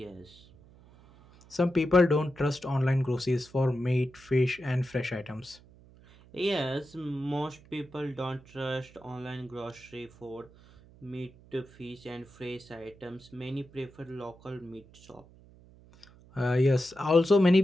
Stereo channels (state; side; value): noise; right; hum, 24 dB below the sound